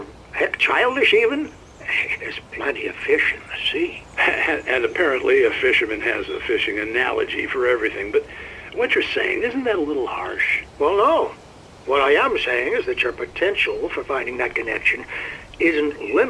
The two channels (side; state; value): both; identical; correlation 1.00